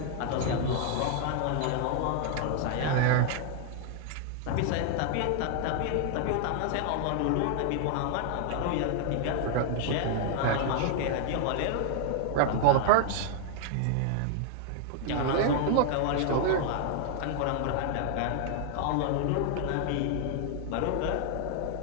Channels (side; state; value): both; different; correlation 0.00